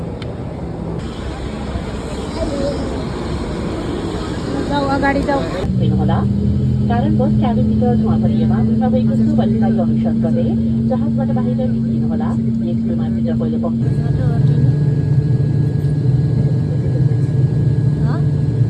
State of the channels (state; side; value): identical; both; correlation 1.00